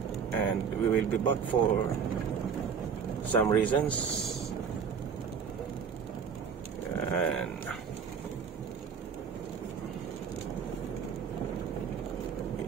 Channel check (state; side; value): quieter; left; 6.6 dB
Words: and we will be back for some reasons. And